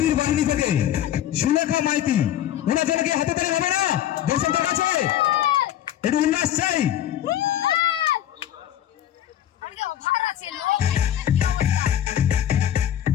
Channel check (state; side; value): quieter; right; 11.6 dB